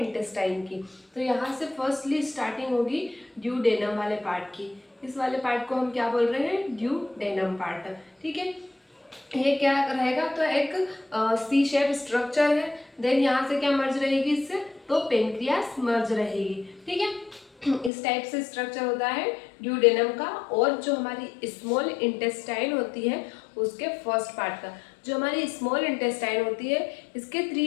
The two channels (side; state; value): right; drops out; at 17.9 s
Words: की। तो यहाँ से फर्स्टली स्टार्टिंग होगी ड्यूडेनम वाले पार्ट की। इस वाले पार्ट को हम क्या बोल रहे हैं, ड्यूडेनम पार्ट। ठीक है, ये क्या रहेगा, तो एक सी शेप स्ट्रक्चर है। देन यहाँ से क्या मर्ज रहेगी इससे, तो पेनक्रियास मर्ज रहेगी। ठीक है, इस टाइप से स्ट्रक्चर होता है ड्यूडेनम का। और जो हमारी स्मॉल इंटेस्टाइन होती है उसके फर्स्ट पार्ट का, जो हमारी स्मॉल इंटेस्टाइन होती है इसके